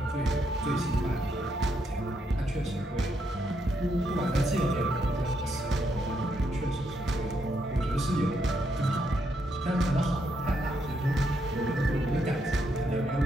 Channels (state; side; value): normal; both; correlation 0.77